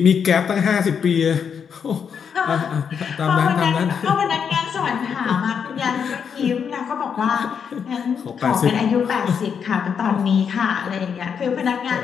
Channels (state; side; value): quieter; right; 7.0 dB